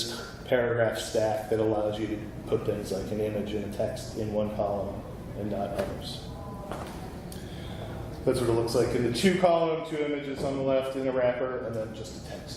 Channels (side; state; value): both; identical; correlation 1.00